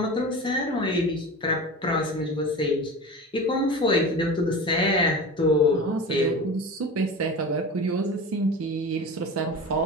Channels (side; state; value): both; normal; correlation 0.32